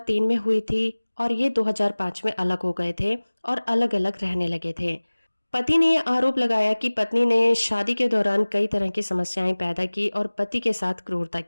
में हुई थी और ये 2005 में अलग हो गए थे और अलग अलग रहने लगे थे। पति ने यह आरोप लगाया कि पत्नी ने शादी के दौरान कई तरह की समस्याएं पैदा की और पति के साथ क्रूरता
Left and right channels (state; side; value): inverted; both; correlation -1.00